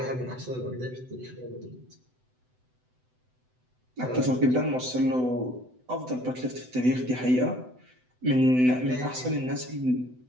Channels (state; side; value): late; left; 7.9 ms